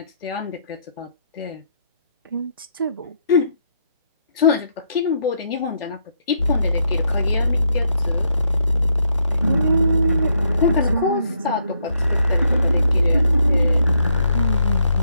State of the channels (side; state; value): both; inverted; correlation -0.75